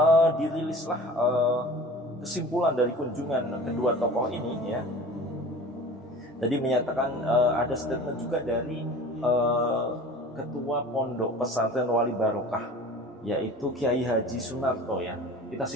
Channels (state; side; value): normal; both; correlation 0.40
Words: dirilislah kesimpulan dari kunjungan kedua tokoh ini ya. Tadi menyatakan ada statement juga dari Ketua Pondok Pesantren Wali Barokah, yaitu Kiai Haji Sunarto ya. Kita